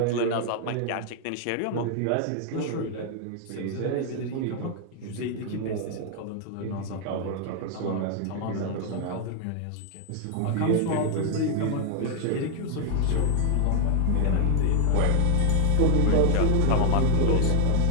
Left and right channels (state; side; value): different; both; correlation 0.00